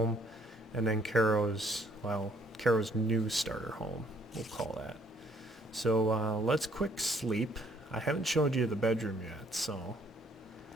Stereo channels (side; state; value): both; normal; correlation 0.64